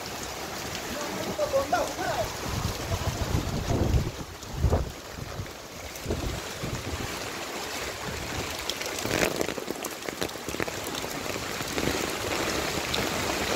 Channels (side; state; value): both; identical; correlation 1.00